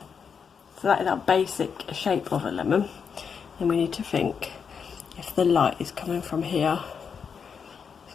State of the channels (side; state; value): right; quieter; 6.5 dB